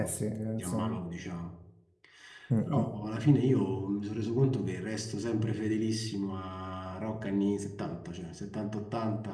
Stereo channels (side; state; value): both; identical; correlation 1.00